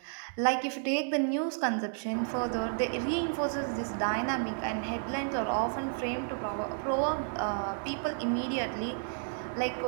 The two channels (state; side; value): silent; left; 57 dB below the other